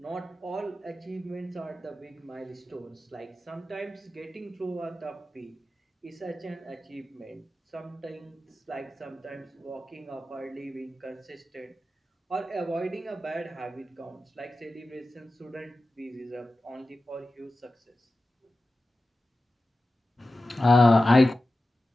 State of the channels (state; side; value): normal; both; correlation 0.94